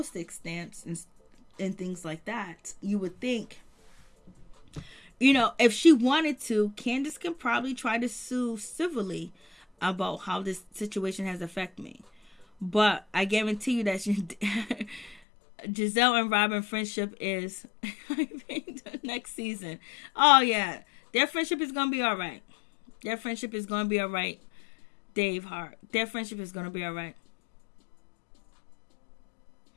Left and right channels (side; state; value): right; drops out; at 15.2 s